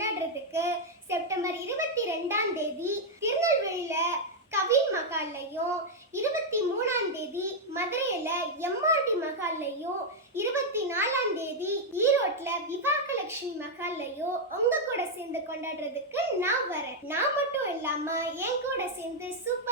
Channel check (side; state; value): both; normal; correlation -0.01